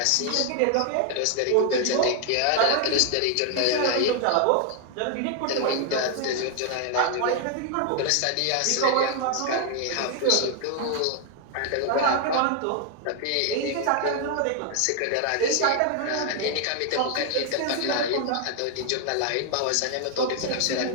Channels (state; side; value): different; both; correlation 0.00